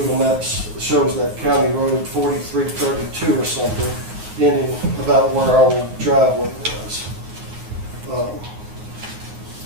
Maps shows that County Road 4332 or something, ending about where our old driveway was.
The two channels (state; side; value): late; left; 9.5 ms